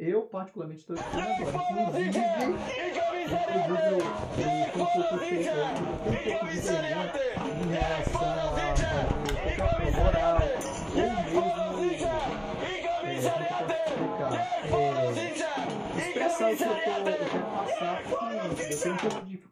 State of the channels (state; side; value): identical; both; correlation 1.00